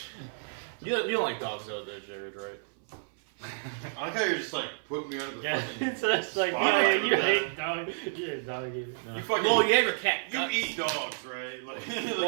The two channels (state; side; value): silent; left; 58 dB below the other